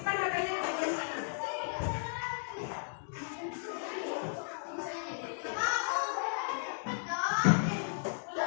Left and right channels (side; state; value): right; silent; digital silence